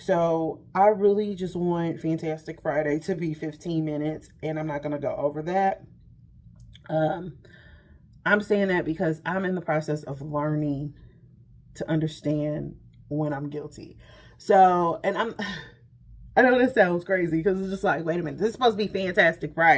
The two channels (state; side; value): identical; both; correlation 1.00